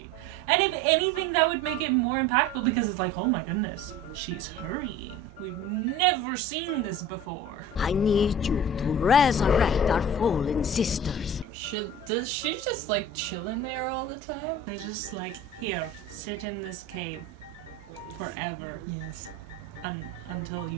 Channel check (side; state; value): both; normal; correlation 0.40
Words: And if anything, that would make it more impactful because it's like, oh my goodness, she's hurrying. We've never seen this before. I need you to resurrect our fallen sisters. Does she just like chill in there all the time? They're just like, here, sit in this cave forever. Yes. Until